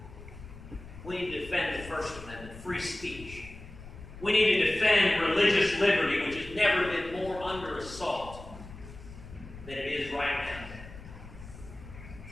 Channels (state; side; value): noise; left; rumble, 15 dB below the sound